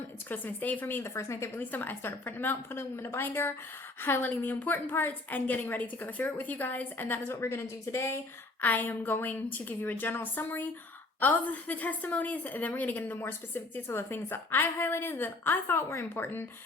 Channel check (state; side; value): quieter; right; 3.1 dB